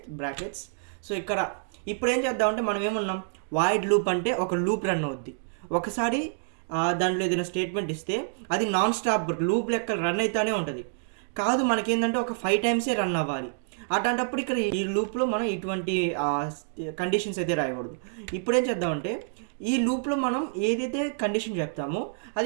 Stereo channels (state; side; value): silent; left; digital silence